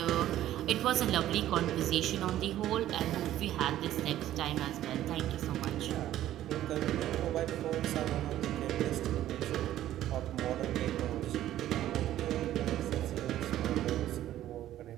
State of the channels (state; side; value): quieter; left; 13.0 dB